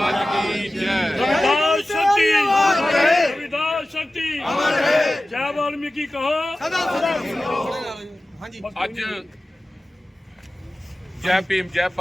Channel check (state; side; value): normal; both; correlation 0.95